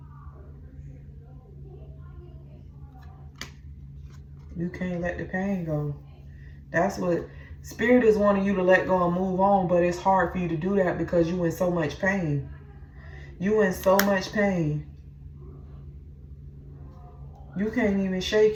You can't let the pain go. That's what Spirit is wanting you to let go and move on, but it's hard for you to do that because you in so much pain. You in so much pain. You can't even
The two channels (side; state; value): both; identical; correlation 1.00